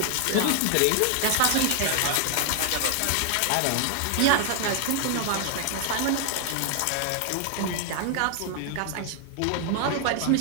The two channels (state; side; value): different; both; correlation 0.00